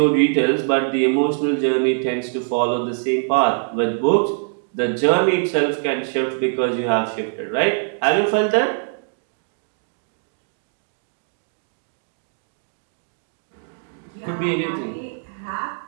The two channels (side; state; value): left; silent; digital silence